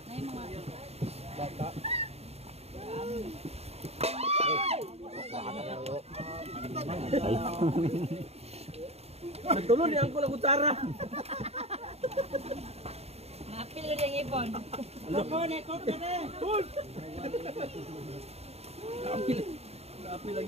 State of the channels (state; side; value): late; left; 0.30 ms